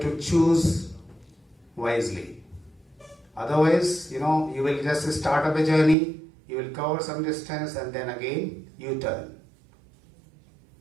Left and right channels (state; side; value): drops out; left; at 6.0 s